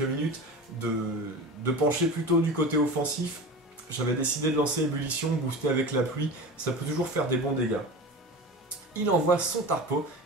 de pencher plutôt du côté offensif, j'avais décidé de lancer Ébullition, booster avec la pluie, ça peut toujours faire des bons dégâts. Il envoie son Tarpo.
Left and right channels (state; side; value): normal; both; correlation 0.32